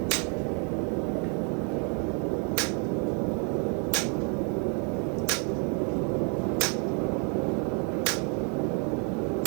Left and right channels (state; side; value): quieter; left; 38.7 dB